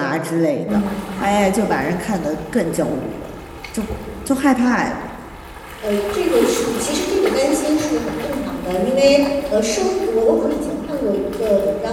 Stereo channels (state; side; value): identical; both; correlation 1.00